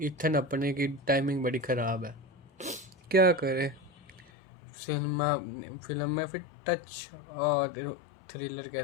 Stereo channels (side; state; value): right; drops out; at 4.3 s